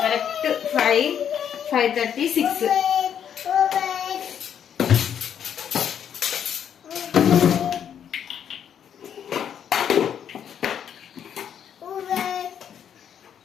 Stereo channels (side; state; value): right; quieter; 8.8 dB